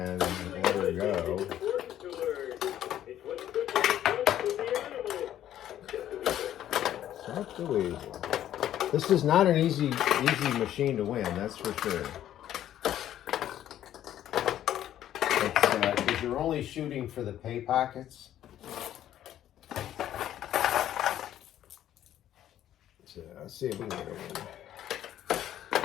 there we go. So this is not an easy machine to win, that's for sure. Because you're only shooting for the pay pockets. So let's see if we can get it in.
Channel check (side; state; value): right; quieter; 11.7 dB